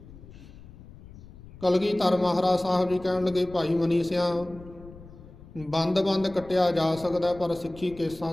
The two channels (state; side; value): noise; left; rumble, 19 dB below the sound